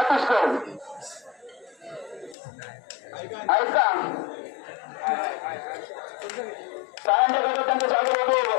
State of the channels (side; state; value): right; drops out; at 2.4 s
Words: आहेत का? शाळांच्या गटात त्यांचं स्वागत होतो.